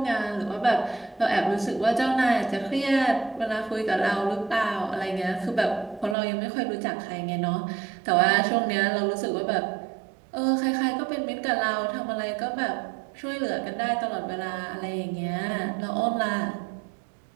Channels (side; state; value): left; drops out; at 6.2 s